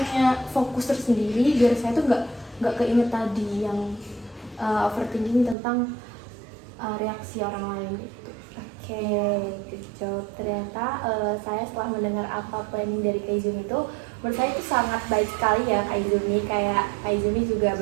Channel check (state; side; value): drops out; left; at 5.6 s